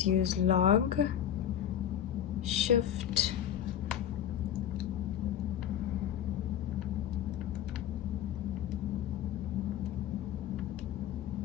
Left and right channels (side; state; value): right; quieter; 10.2 dB